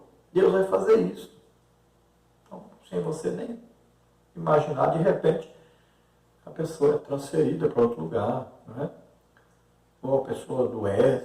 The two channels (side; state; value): both; identical; correlation 1.00